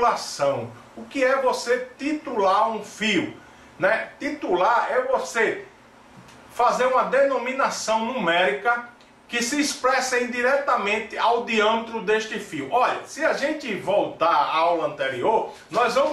O que é você titular um fio, né? Titular é você fazer uma denominação numérica que se expressa indiretamente ao diâmetro deste fio. Olha, se a gente voltar à aula anterior, nós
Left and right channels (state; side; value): identical; both; correlation 1.00